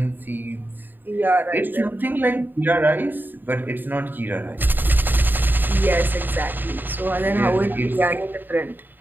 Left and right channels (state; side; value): late; left; 0.092 ms